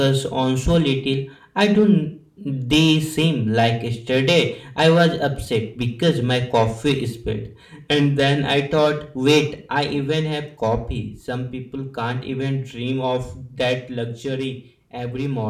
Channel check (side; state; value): both; identical; correlation 1.00